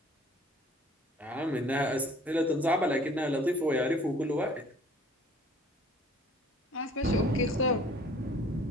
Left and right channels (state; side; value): normal; both; correlation 0.53